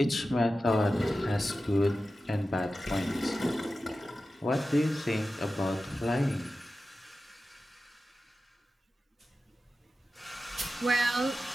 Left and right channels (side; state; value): both; normal; correlation 0.93